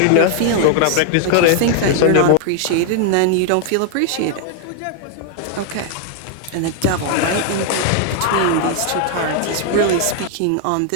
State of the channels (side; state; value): both; different; correlation 0.00